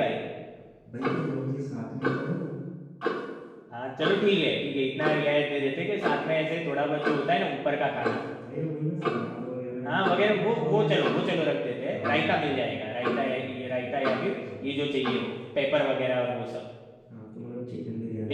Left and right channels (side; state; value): both; identical; correlation 1.00